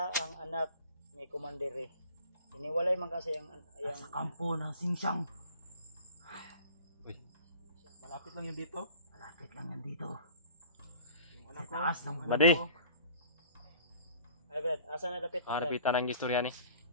ang anak ni Commander Ray? Iniwalay man kasi Sa kampo ng Singsang. Uy, malapit lang yun dito. Malapit lang yan dito. Yung Sa taas ng Badi! Ay Brad, asa na dapit na Brad? Harapitan ng istorya ni.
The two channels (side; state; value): both; inverted; correlation -0.46